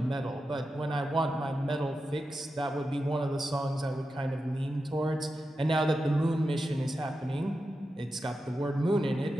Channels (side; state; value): both; normal; correlation 0.90